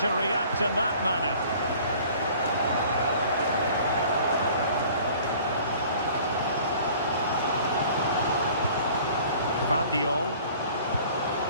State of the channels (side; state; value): both; inverted; correlation -0.50